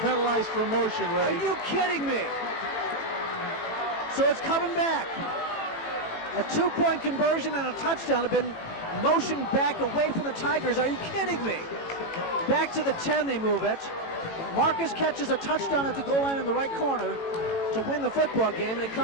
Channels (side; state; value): right; late; 18 ms